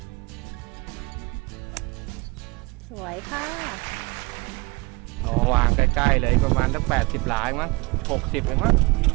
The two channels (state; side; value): quieter; left; 26.1 dB